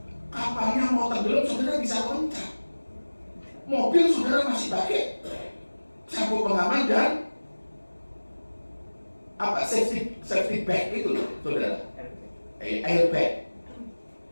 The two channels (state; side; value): inverted; both; correlation -1.00